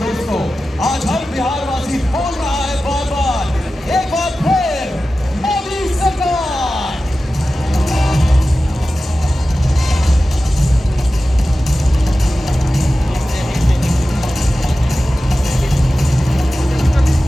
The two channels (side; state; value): both; normal; correlation 0.94